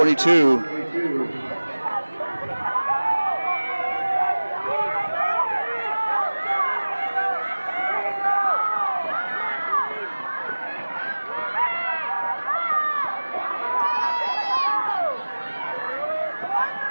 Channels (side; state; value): both; inverted; correlation -1.00